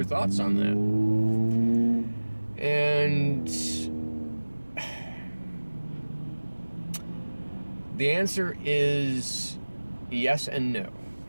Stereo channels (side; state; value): both; inverted; correlation -1.00